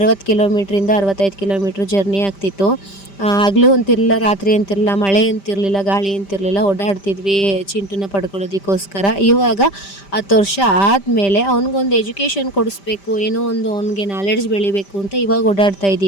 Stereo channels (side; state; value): right; late; 5.1 ms